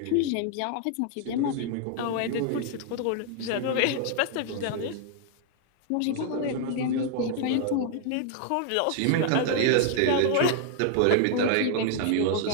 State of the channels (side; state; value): both; different; correlation 0.00